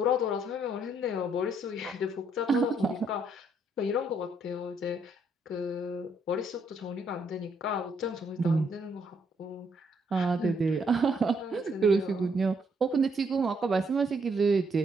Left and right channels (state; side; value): normal; both; correlation 0.71